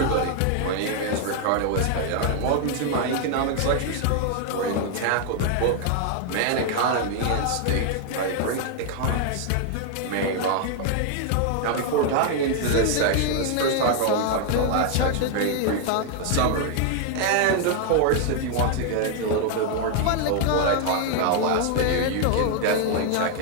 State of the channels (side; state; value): both; different; correlation 0.00